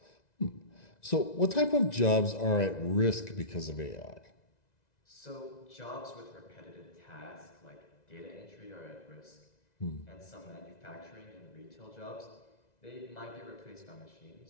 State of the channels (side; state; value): right; late; 2.0 ms